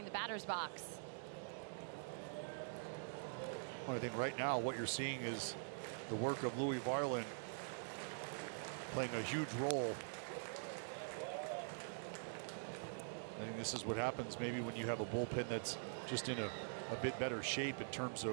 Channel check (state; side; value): silent; left; digital silence